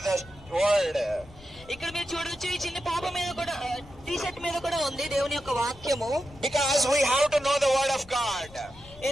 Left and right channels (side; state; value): left; noise; rumble, 21 dB below the sound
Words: the word. ఇక్కడ మీరు చూడొచ్చు, ఈ చిన్న పాప మీద కూడా టీ షర్ట్ మీద కూడా ఉంది దేవుని యొక్క వాక్యము. Because we have to know the word of God.